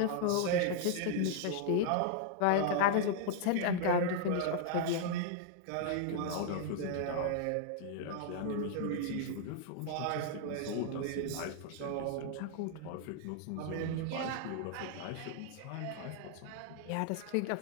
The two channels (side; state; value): both; different; correlation 0.00